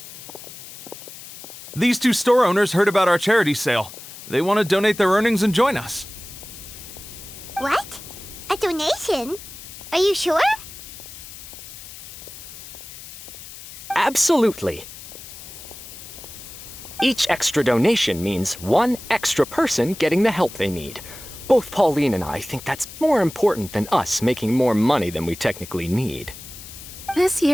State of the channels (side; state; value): left; noise; hiss, 14 dB below the sound